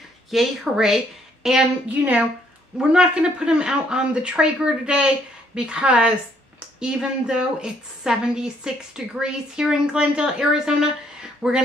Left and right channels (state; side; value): normal; both; correlation 0.68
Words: yay, hooray. And, you know, we're not going to put them out on the Traeger today because even though it's 76 degrees here in Glendale, Arizona, we're going